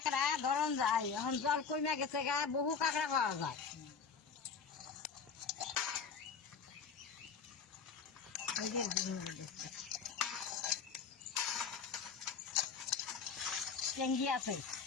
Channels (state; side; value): quieter; right; 5.9 dB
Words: ধরন যায়, এখন জল কমে গেছে গা, বহু কাঁকড়া পাওয়া যায়। চেঙ্গি আছে